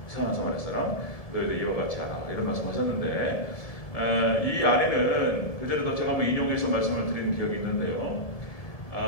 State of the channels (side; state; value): right; late; 1.7 ms